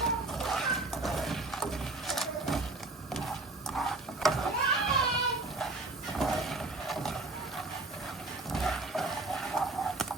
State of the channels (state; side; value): quieter; left; 3.1 dB